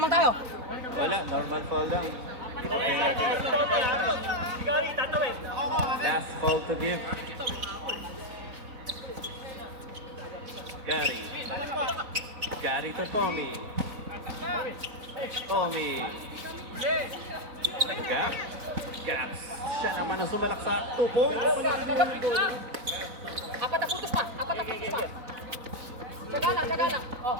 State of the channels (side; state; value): left; late; 4.0 ms